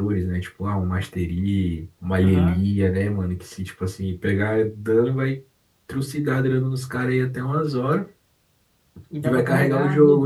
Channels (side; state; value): both; identical; correlation 1.00